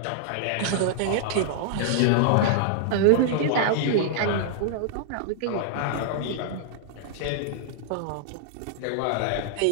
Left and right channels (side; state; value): both; different; correlation -0.01